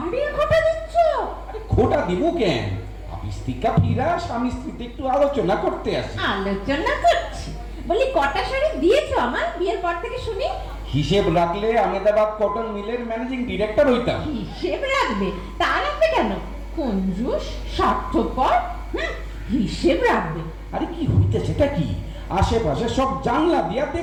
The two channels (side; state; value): both; identical; correlation 1.00